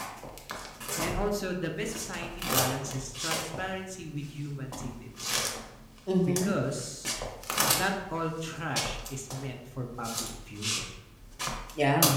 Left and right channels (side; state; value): both; identical; correlation 1.00